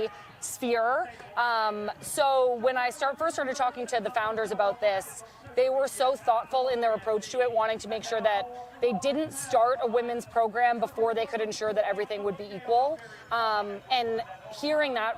sphere. So when I first started talking to the founders about this, they were so thoughtful in their approach to it, wanting to make sure that they didn't start a women's program before they could ensure that everything would be equal. And hearing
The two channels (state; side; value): identical; both; correlation 1.00